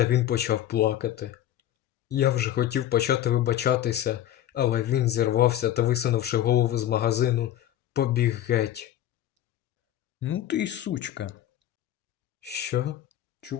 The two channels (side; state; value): right; quieter; 12.0 dB